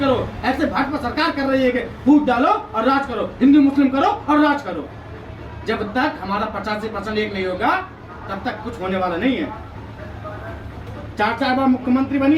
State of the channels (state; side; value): identical; both; correlation 1.00